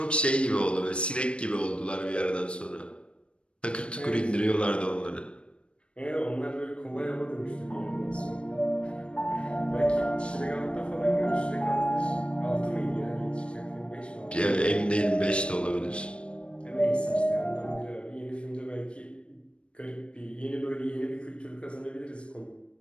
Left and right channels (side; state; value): right; late; 0.058 ms